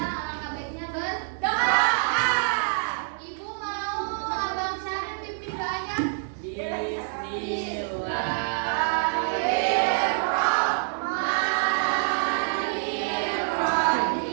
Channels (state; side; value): silent; left; digital silence